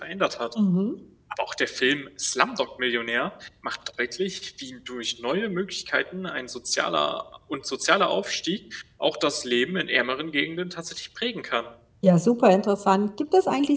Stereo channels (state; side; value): identical; both; correlation 1.00